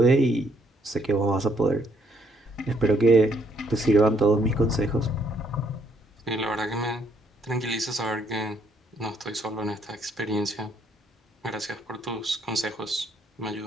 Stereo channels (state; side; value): normal; both; correlation 0.70